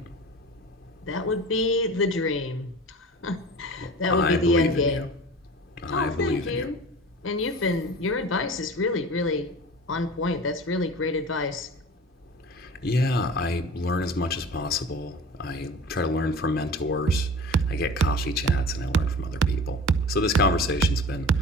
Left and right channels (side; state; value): both; normal; correlation 0.38